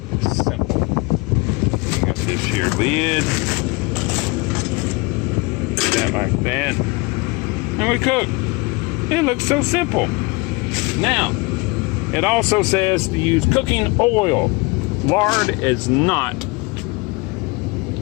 simple. We got this here lid. That like that. And we cook. It looks so simple. Now, it also says to use cooking oil. Lard is not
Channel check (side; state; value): right; quieter; 26.3 dB